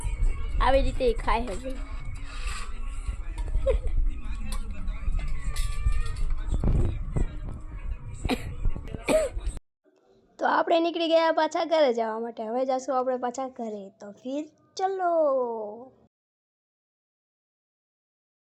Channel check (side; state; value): both; identical; correlation 1.00